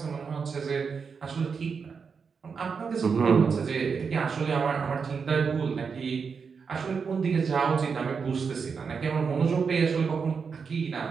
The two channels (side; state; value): left; quieter; 5.7 dB